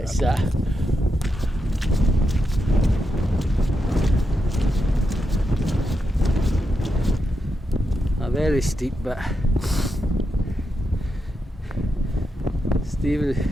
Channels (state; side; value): normal; both; correlation 0.86